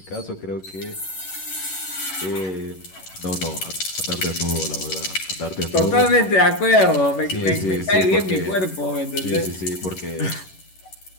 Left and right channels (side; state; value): right; late; 11 ms